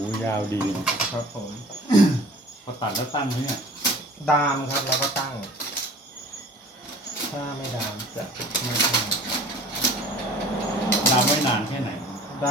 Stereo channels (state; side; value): normal; both; correlation 0.46